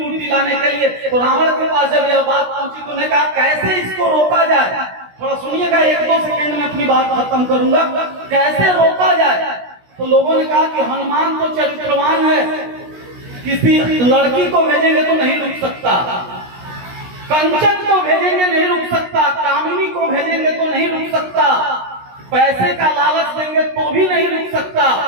लाने के लिए तो रावण के पास जब यह बात पहुंची तो उन्होंने कहा कैसे इसको रोका जाए। थोड़ा सुनिएगा, 1-2 सेकंड में अपनी बात खत्म करूंगा। कैसे रोका जाए? तो लोगों ने कहा कि हनुमान तो चरित्रवान है, किसी लड़की को भेजेंगे तो नहीं रुक सकता, कंचन को भेजेंगे नहीं रुक सकता, कामिनी को भेजेंगे तो नहीं रुक सकता, पैसे का लालच देंगे तो भी नहीं रुक सकता।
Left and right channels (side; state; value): left; late; 16 ms